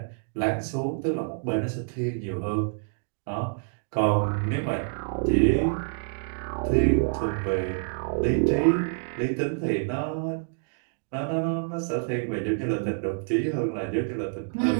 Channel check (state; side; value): silent; left; digital silence